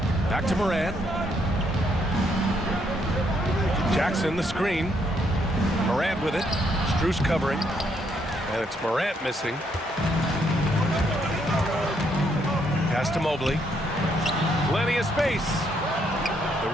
Back to Morant. Jackson the screen. Morant with it. Strus covering. And it's Morant missing. Pass to Mobley. Plenty of space. The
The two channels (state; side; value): normal; both; correlation 0.73